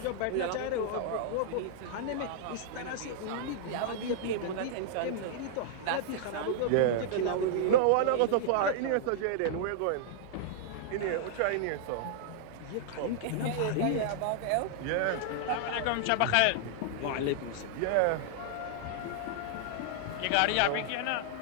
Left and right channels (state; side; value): different; both; correlation -0.01